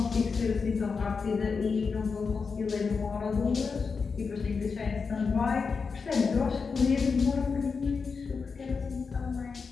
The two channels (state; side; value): quieter; right; 5.1 dB